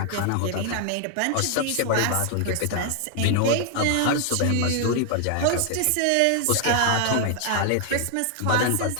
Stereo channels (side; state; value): both; different; correlation 0.00